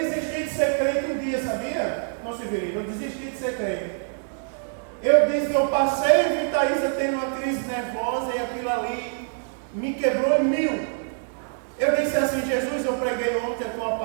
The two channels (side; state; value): left; silent; digital silence